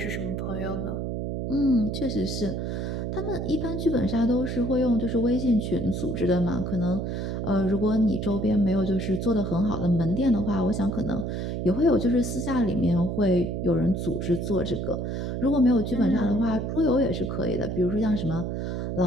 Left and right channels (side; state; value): right; noise; hum, 3 dB below the sound